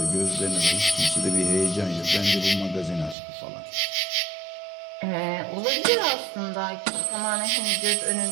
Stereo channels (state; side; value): drops out; left; at 3.2 s